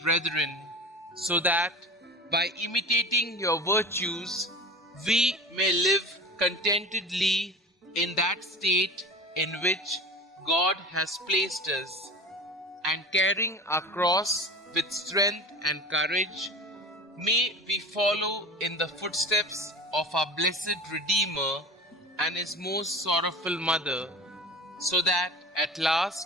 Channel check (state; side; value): normal; both; correlation 0.34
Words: brethren, so that by imitating your virtues, we may live contentedly in that state in which God has placed us, and carrying our cross with strength and courage, may we follow in the footsteps of our blessed Redeemer and his most sorrowful mother, so that at